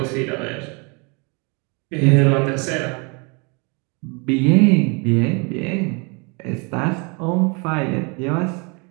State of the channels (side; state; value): left; quieter; 31.8 dB